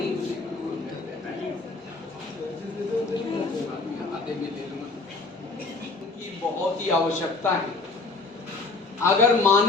आधे में ले लूंगा। बहुत बहुत ही आवश्यकता है। अगर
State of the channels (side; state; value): right; quieter; 3.8 dB